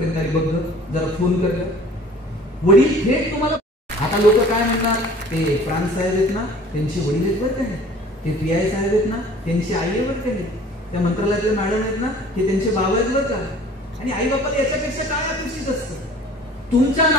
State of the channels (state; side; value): normal; both; correlation 0.48